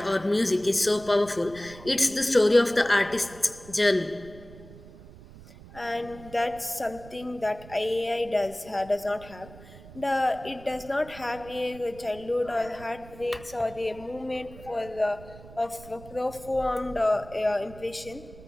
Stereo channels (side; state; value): right; noise; rumble, 18 dB below the sound